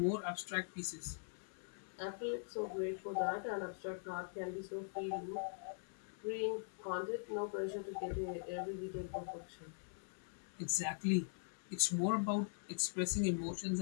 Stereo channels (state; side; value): silent; right; digital silence